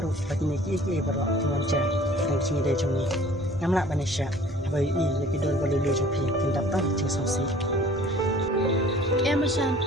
ru lagi ni ki berok mengajar. Yang cungi dari cungi. Ngamla banisha. Abai i lagi dol boleh lu cungi. Kita tak cungi songsi. Manshan,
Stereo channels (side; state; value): both; normal; correlation 0.51